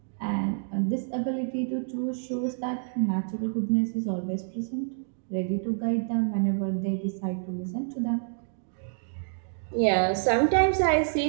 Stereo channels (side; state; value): left; silent; digital silence